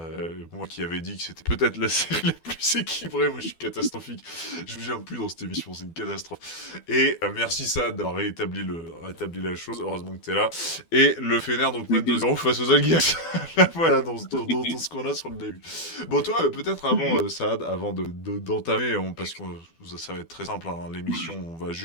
Moi qui avais dit que c'était peut-être la série la plus équilibrée, moi je suis catastrophique. Je ne viens plus dans cette émission, c'est une catastrophe. Et merci Saad d'avoir rétabli la chose, heureusement que t'es là. Et le Fener donc mène T'inquiète. 2-0 face aux Algiers. Voilà, dans ce qu'on a sur le début. Bon, toi, peut-être avant, Saad, avant d'entamer, parce que ça va être très simple, hein, l'émission, on va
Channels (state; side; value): late; right; 12 ms